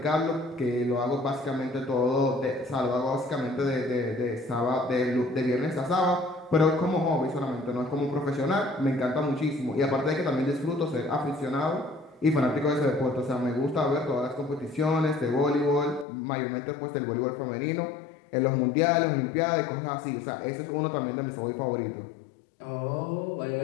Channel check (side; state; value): right; drops out; at 16.1 s